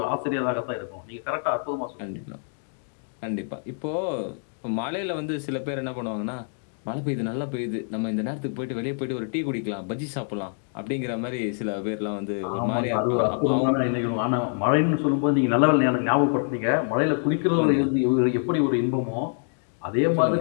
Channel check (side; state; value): right; silent; 61 dB below the other